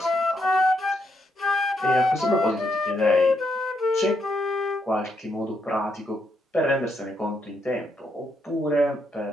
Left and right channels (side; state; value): both; normal; correlation 0.78